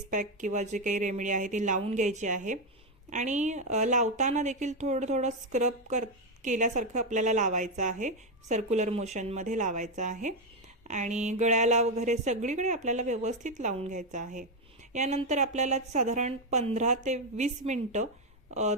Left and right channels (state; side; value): normal; both; correlation 0.06